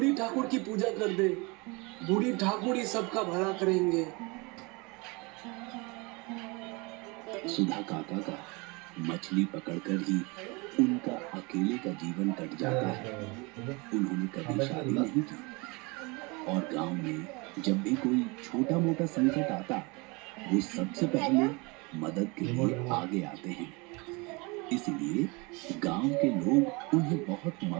ठाकुर की पूजा कर दे, बूढ़ी ठाकुर ही सबका भला करेंगे। सुधा काका का मछली पकड़कर ही उनका अकेले का जीवन कट जाता है। उन्होंने कभी शादी नहीं की और गांव में जब भी कोई छोटा मोटा संकट आता, वो सबसे पहले मदद के लिए आगे आते हैं। इसलिए गांव के लोग उन्हें बहुत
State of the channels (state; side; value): quieter; left; 27.5 dB